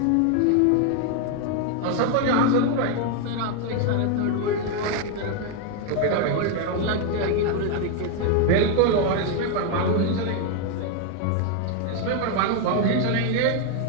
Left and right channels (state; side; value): different; both; correlation 0.01